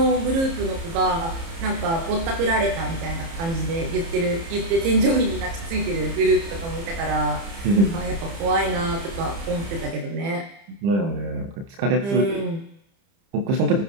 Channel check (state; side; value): late; left; 30 ms